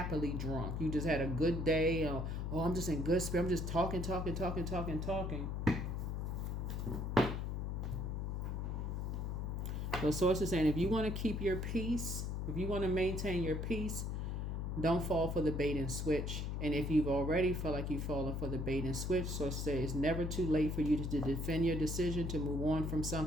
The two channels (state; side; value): noise; left; hum, 2 dB below the sound